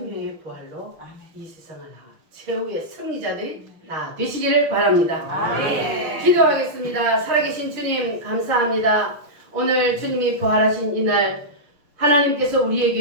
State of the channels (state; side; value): late; left; 6.1 ms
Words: 부활로 이 세상을 나가 최후의 승리자들이 다 되시기를 바랍니다. 아멘. 기도하겠습니다. 살아계신 주님 감사합니다. 오늘 주님이 부활하신 이날 하나님께서